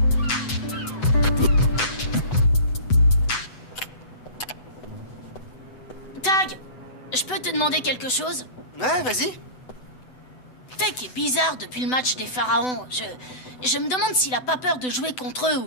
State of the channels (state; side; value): late; right; 8.0 ms